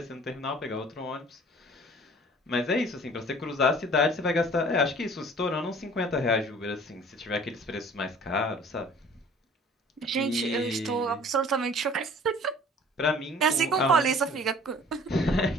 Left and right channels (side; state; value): both; normal; correlation 0.49